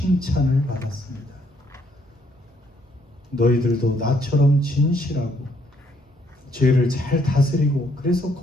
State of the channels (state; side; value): normal; both; correlation 0.69